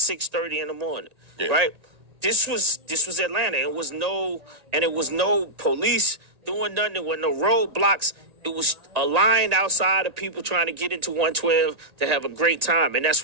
in the morning. Yeah. Right? This was Atlanta. It was no police doing nothing. There were no roadblocks. It was a line outside of people trying to get into 112 to have a great time, and that's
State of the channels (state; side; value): late; left; 1.9 ms